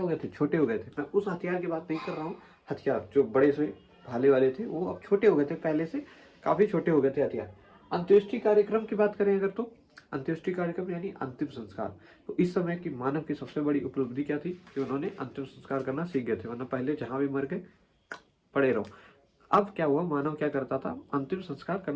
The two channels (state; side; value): identical; both; correlation 1.00